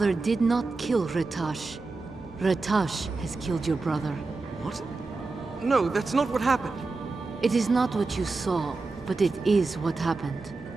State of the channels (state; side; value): quieter; left; 3.7 dB